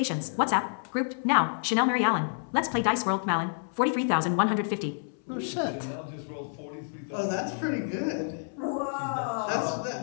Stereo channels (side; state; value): right; silent; 59 dB below the other